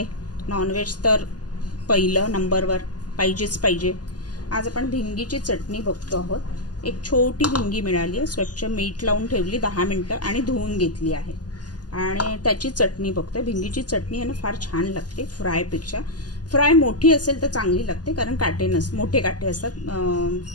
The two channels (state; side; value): late; right; 0.69 ms